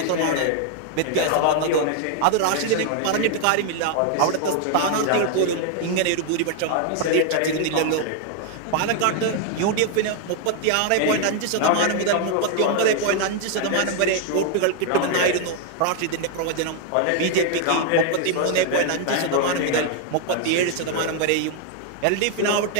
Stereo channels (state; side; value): different; both; correlation 0.00